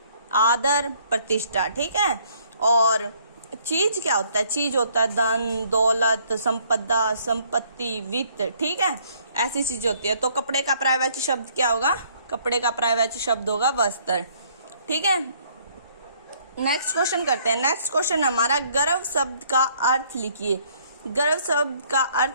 आदर, प्रतिष्ठा। ठीक है। और चीज क्या होता है? चीज होता है धन, दौलत, संपदा, संपत्ति, वित्त। ठीक है, ऐसी चीज होती है। तो कपड़े का पर्यायवाची शब्द क्या होगा? कपड़े का पर्यायवाची शब्द होगा वस्त्र। ठीक है। नेक्स्ट क्वेश्चन करते हैं। नेक्स्ट क्वेश्चन हमारा गर्व शब्द का अर्थ लिखिए। गर्व शब्द का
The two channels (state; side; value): inverted; both; correlation -0.63